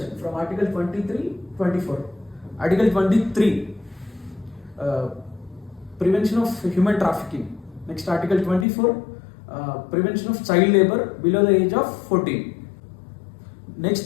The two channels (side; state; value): right; drops out; at 8.7 s